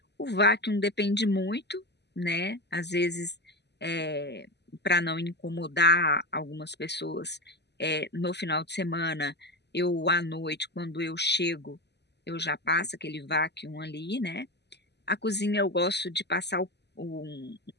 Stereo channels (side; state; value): right; late; 0.50 ms